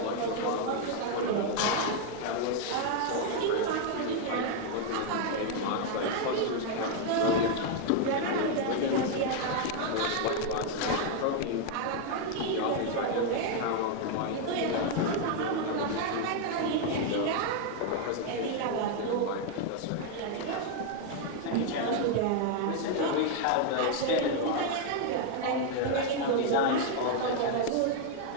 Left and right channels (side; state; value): both; different; correlation 0.00